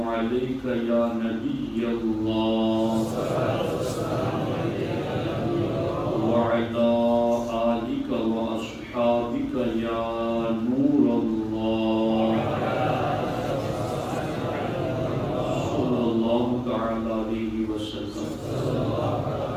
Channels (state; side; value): identical; both; correlation 1.00